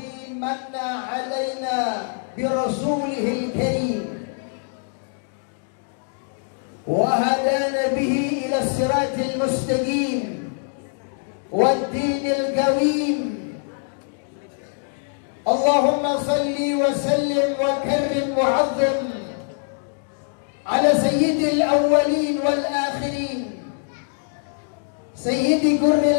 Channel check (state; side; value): silent; right; digital silence